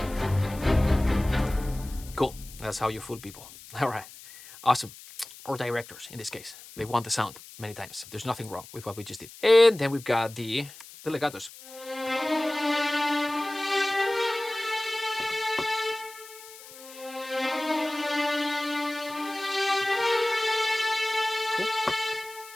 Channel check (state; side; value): noise; left; hiss, 18 dB below the sound